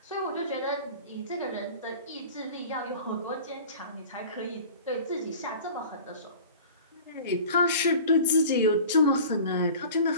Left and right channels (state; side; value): inverted; both; correlation -0.41